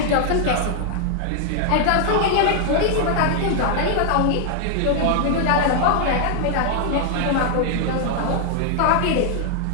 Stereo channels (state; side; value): different; both; correlation 0.00